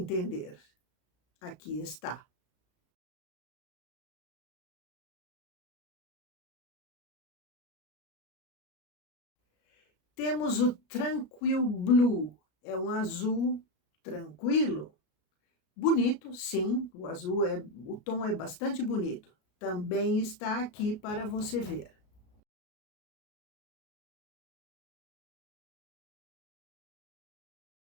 Aqui está. Temos o Tranquil Blue, é um azul tranquilo, bonito, sim, o tom é bastante bonito. Também está aqui para você ver.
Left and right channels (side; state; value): right; late; 33 ms